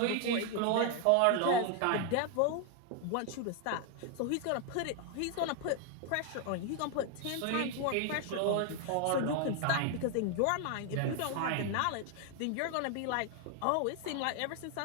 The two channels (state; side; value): different; both; correlation 0.01